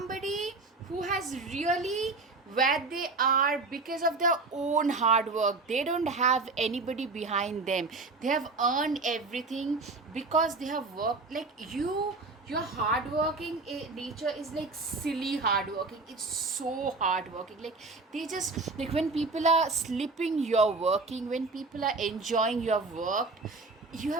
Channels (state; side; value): quieter; left; 3.7 dB